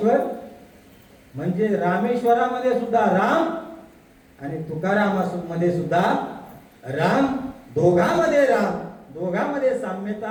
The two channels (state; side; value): identical; both; correlation 1.00